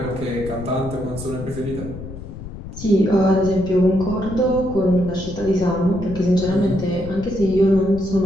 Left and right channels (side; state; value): left; noise; rumble, 11 dB below the sound